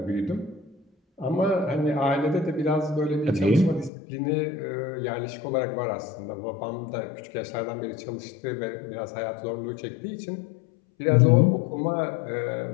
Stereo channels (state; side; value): drops out; right; at 3.9 s